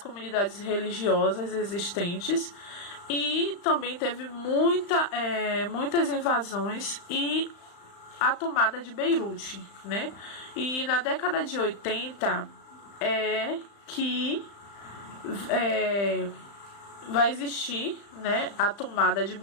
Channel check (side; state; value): right; late; 35 ms